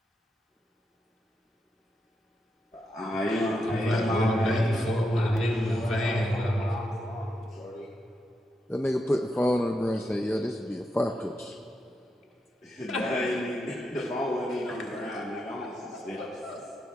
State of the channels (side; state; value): both; normal; correlation 0.84